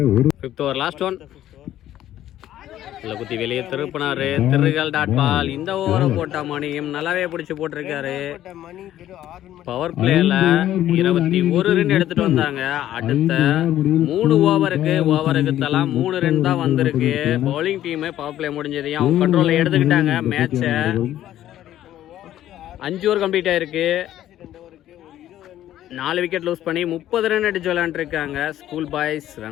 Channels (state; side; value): quieter; right; 12.6 dB